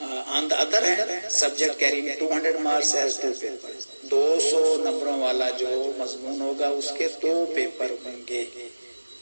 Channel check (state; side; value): inverted; both; correlation -1.00